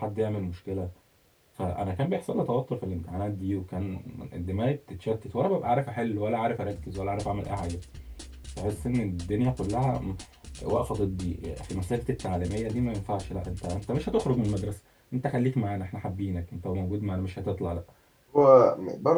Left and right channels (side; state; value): both; identical; correlation 1.00